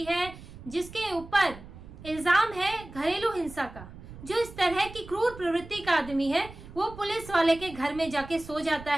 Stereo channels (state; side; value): noise; right; rumble, 16 dB below the sound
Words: है, जिसके ऊपर इल्जाम है घरेलू हिंसा का, जो इस तरह की क्रूर प्रवृत्ति का आदमी है, वो पुलिस वाले के घर में जाके सो जाता